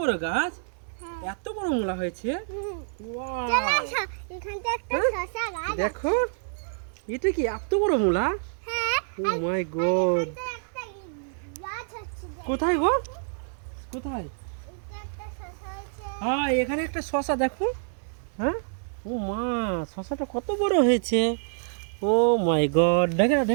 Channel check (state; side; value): silent; left; digital silence